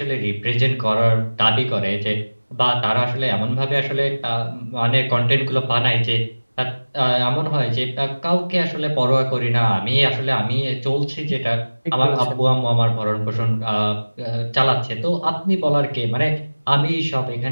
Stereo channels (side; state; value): both; inverted; correlation -1.00